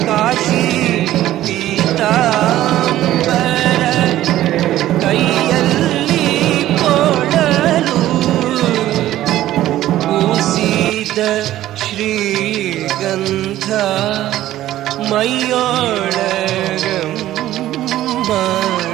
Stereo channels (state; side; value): quieter; left; 13.9 dB